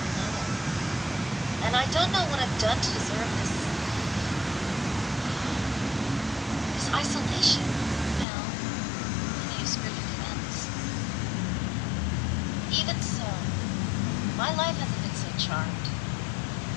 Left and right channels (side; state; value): right; drops out; at 8.2 s